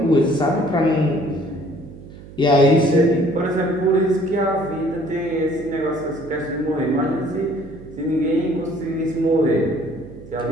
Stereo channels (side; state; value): right; noise; hum, 17 dB below the sound